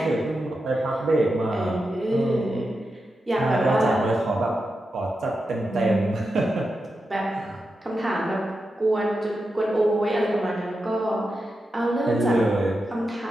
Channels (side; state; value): both; normal; correlation 0.89